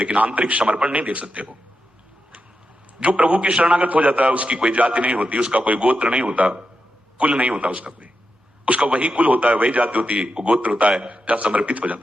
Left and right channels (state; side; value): normal; both; correlation 0.88